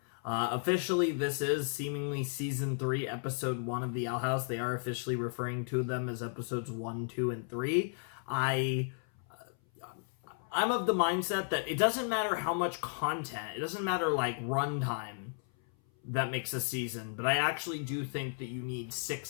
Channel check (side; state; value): right; silent; 55 dB below the other